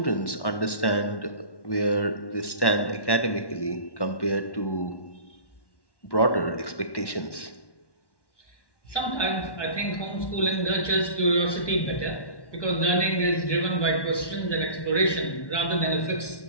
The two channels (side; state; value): right; late; 1.1 ms